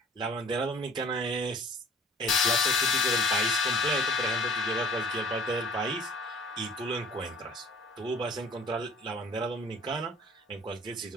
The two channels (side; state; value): both; normal; correlation 0.50